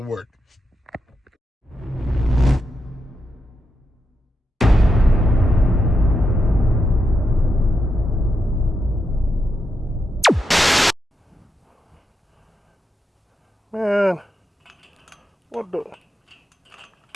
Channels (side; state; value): both; normal; correlation 0.85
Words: work. Man, what the?